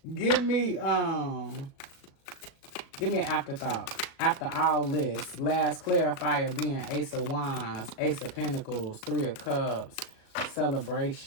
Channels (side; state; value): right; late; 37 ms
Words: Give me an afterthought. After all this, last clarifier being Ace of Wands, Ace of Pentacles, Three of Cups,